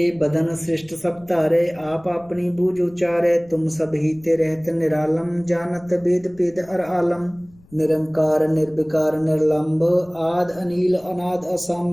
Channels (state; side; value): noise; left; rumble, 27 dB below the sound